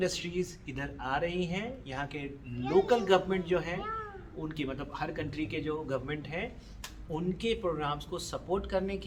इधर आ रही हैं। यहाँ के लोकल गवर्नमेंट जो हैं उनकी, मतलब हर कंट्री के जो गवर्नमेंट हैं उनके प्रोग्राम्स को सपोर्ट करने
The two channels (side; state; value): both; identical; correlation 1.00